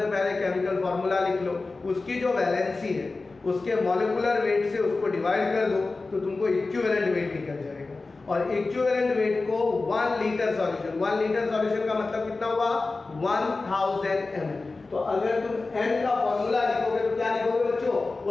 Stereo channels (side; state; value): right; quieter; 3.6 dB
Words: पहले केमिकल फॉर्मूला लिख लो, उसकी जो वैलेंसी है उसके मॉलिक्यूलर वेट से उसको डिवाइड कर दो तो तुमको इक्विवेलेंट वेट निकल जाएगा। और इक्विवेलेंट वेट को 1 लीटर सॉल्यूशन, 1 लीटर सॉल्यूशन का मतलब कितना हुआ 1000 ml। तो अगर तुम n का फॉर्मूला लिखोगे तो क्या लिखोगे बच्चों,